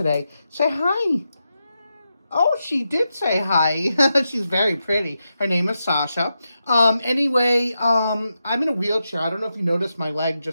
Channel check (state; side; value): inverted; both; correlation -0.88